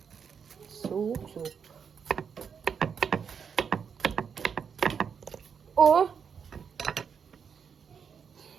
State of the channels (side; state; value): left; quieter; 6.7 dB